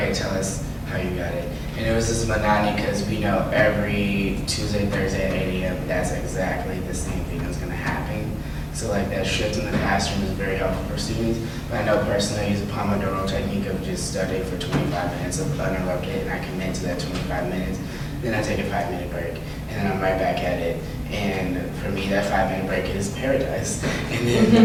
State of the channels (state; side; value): identical; both; correlation 1.00